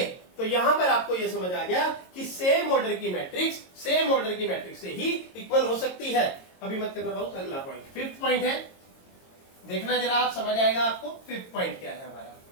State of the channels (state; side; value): late; right; 22 ms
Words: तो यहां पर आपको ये समझ आ गया कि सेम ऑर्डर की मैट्रिक्स सेम ऑर्डर की मैट्रिक्स से ही इक्वल हो सकती है। अभी मत करना बहुत, अगला पॉइंट, 5th पॉइंट है, देखना जरा, आप समझ आएगा आपको 5th पॉइंट क्या है हमारा।